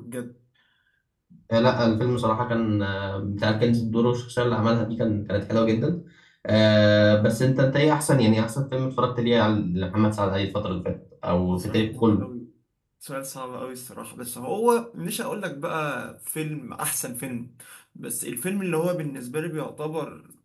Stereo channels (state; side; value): identical; both; correlation 1.00